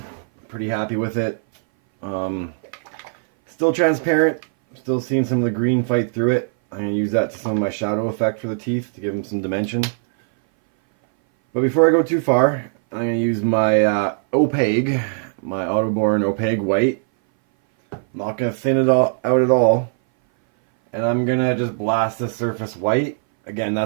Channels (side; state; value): left; silent; 60 dB below the other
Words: pretty happy with it. Still transparent, still seeing some of the green fight through it. I'm going to use that to some of my shadow effect for the teeth to give them some dimension. But before I go too far, I'm going to use my opaque, my Autoborn opaque white. I'm not going to thin it all out at all. And I'm going to just blast the surface white. Again,